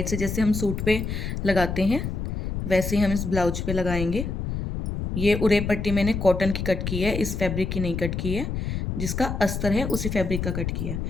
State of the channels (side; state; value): left; noise; rumble, 3 dB below the sound